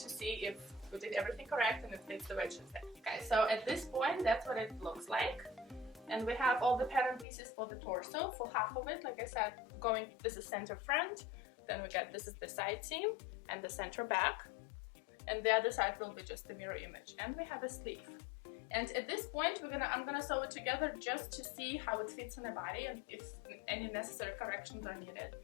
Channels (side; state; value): right; drops out; at 7.2 s